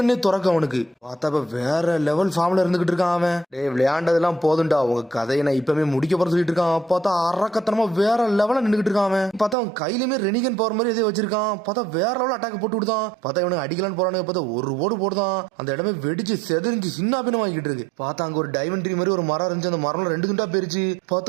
துறக்க அவனுக்கு. பார்த்தா வேற லெவல் ஃபார்ம்ல இருந்துகிட்டு இருக்கான் அவன். டே விளையாண்டதெல்லாம் போதும்டா, உங்க கதையை நான் இப்பவுமே முடிக்க போற சொல்லிட்டு இருக்கான். பார்த்தா அரக்கத்தனமா வேற லெவல நின்றுகிட்டு இருக்கான் அவன். பார்த்தா அவன் கையிலுமே ரெனிகன் பவர் மாதிரி எதோ வச்சிருக்கான். பார்த்தா வேற லெவல் அட்டாக் போட்டு விடுதான். பார்த்தா இவனுக்கு அடிக்கலான்னு போறானுங்க. பார்த்தா ஒரு ஓடு போடுதான். அந்த இடமே வெடிச்சு செதறிஞ்சு சின்ன பின்னம் வாங்கிட்டு இருக்கு. பார்த்தா அங்க ஒரு டைமண்ட் ட்ரீ மாதிரி ஒரு மரம் இருந்துச்சு. அந்த மரம் 2 துண்டா போயிருச்சு.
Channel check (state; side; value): drops out; left; at 9.6 s